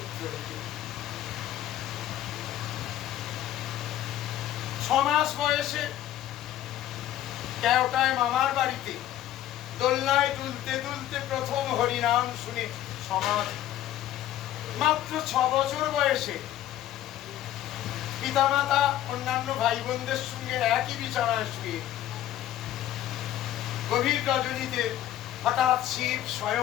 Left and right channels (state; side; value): quieter; right; 12.7 dB